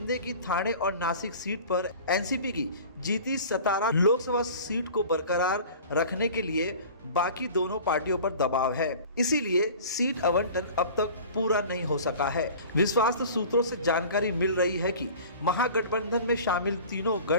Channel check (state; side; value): inverted; both; correlation -0.42